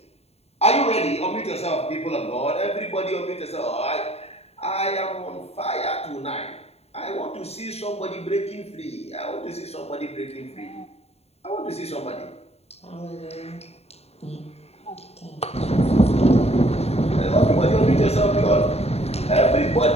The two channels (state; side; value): late; right; 0.30 ms